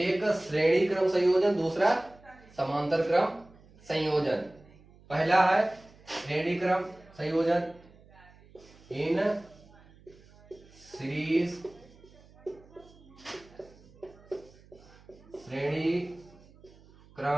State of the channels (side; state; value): right; noise; hum, 25 dB below the sound